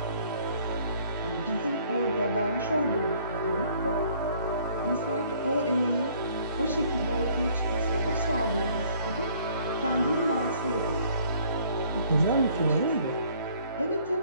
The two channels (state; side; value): inverted; both; correlation -0.59